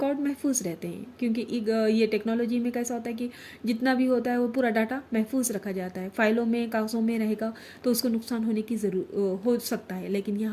महफूज रहते हैं क्योंकि ये टेक्नोलॉजी में कैसा होता है कि जितना भी होता है वो पूरा डाटा महफूज रखा जाता है, फाइलों में कागज़ों में रहेगा, तो उसको नुकसान होने की हो सकता है, लेकिन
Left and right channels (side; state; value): both; identical; correlation 1.00